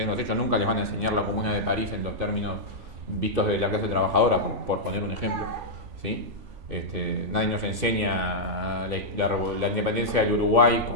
los hechos, nunca les van a enseñar la Comuna de París en los términos vistos de la clase trabajadora, por poner un ejemplo, ¿sí? Nadie nos enseña la independencia del Uruguay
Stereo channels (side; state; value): left; late; 3.5 ms